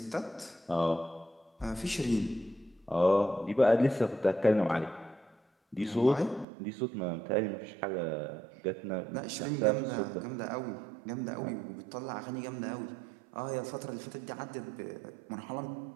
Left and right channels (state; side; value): drops out; left; at 6.5 s